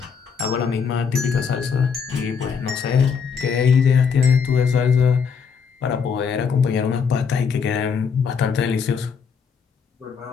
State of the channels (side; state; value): right; quieter; 6.2 dB